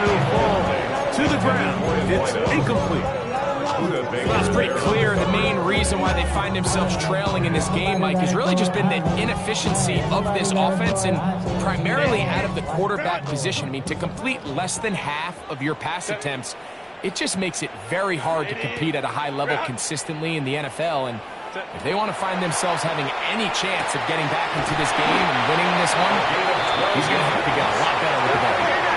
it'll fall to the ground. It's incomplete. Well, it's pretty clear the main reason why they find themselves trailing in this game, Mike, has really just been the inefficiency of this offense and primarily out of the quarterback position. I mean, to complete less than half of your pass attempts, it just makes it very hard to compete at a high level consistently in the NFL. And if they want to find themselves having any chance of getting back into this game and winning this one, he's going to have to get a lot better with the ball.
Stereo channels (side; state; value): both; identical; correlation 1.00